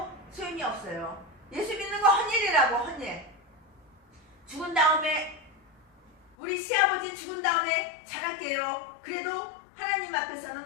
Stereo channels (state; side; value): drops out; right; at 6.3 s